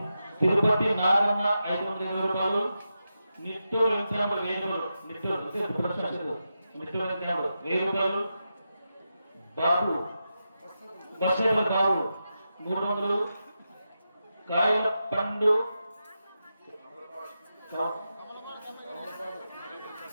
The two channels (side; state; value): both; inverted; correlation -0.89